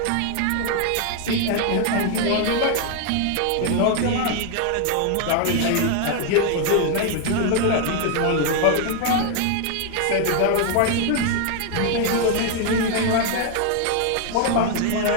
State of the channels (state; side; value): different; both; correlation 0.01